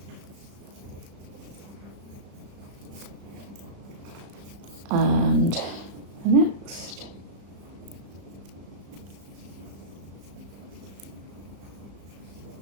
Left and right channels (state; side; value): late; left; 35 ms